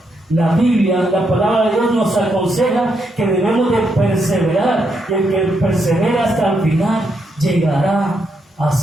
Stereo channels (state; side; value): normal; both; correlation 0.80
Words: La Biblia, la palabra de Dios nos aconseja que debemos de perseverar, y el que persevera hasta el final llegará a